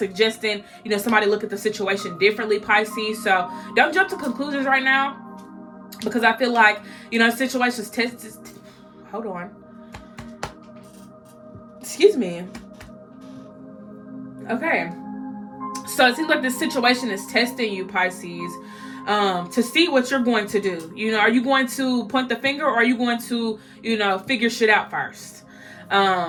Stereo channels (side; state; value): both; identical; correlation 1.00